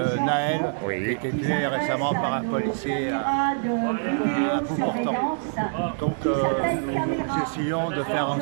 Naël, qui a été tué récemment par un policier à bout portant. Donc nous essayons de faire en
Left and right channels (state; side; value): silent; left; digital silence